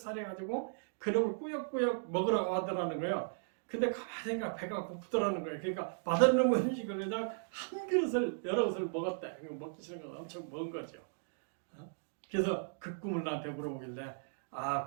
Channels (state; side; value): silent; left; digital silence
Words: 그놈을 꾸역꾸역 먹으라고 하더라는 거예요. 근데 가만히 생각 배가 고프더라는 거예요. 그러니까 맛없는 음식을 그냥 한 그릇을 여러 그릇을 먹었대. 먹기 싫은 건 엄청 먹은 거죠. 그래서 그 꿈을 나한테 물어보길래